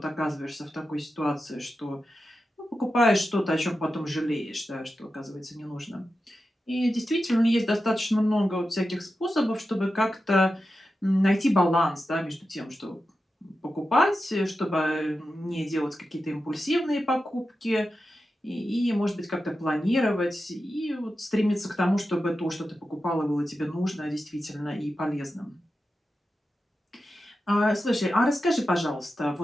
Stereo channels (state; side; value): normal; both; correlation 0.91